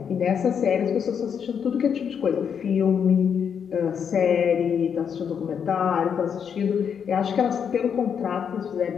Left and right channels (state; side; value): quieter; right; 7.4 dB